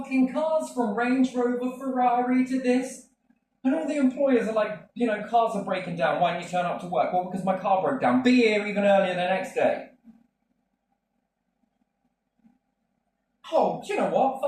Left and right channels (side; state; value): both; identical; correlation 1.00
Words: cars, from Range Rover, Ferrari to this. And all the employers are like, you know, cars are breaking down. Why didn't you turn up to work? Well, because my car broke down. Be here even earlier the next day. Oh, do you know what?